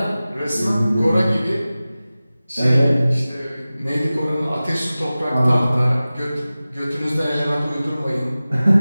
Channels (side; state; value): both; inverted; correlation -0.97